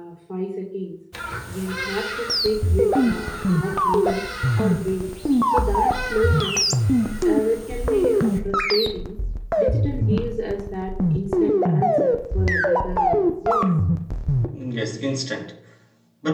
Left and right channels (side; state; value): both; identical; correlation 1.00